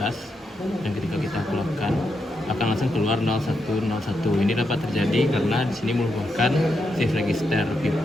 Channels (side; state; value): both; normal; correlation 0.83